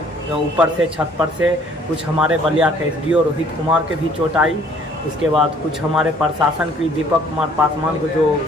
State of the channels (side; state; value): both; normal; correlation 0.58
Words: ऊपर से, छत पर से, कुछ हमारे बलिया के SDO रोहित कुमार के भी चोट आई। उसके बाद कुछ हमारे प्रशासन की दीपक कुमार पासवान को, जो